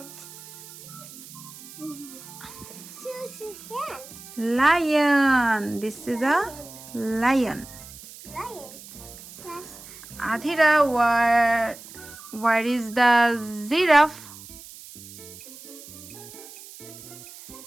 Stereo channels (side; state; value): right; noise; hiss, 17 dB below the sound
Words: Lion. This is a lion. Adhira, where is the giraffe?